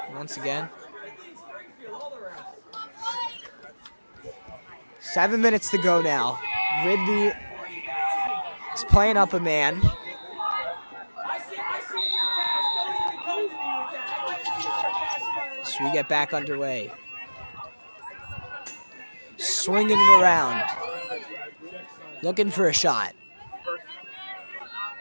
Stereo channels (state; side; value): inverted; both; correlation -1.00